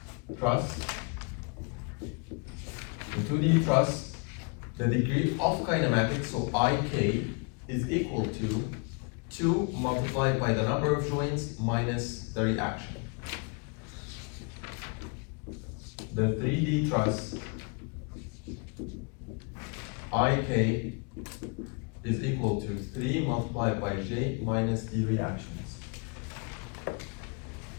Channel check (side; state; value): right; quieter; 34.7 dB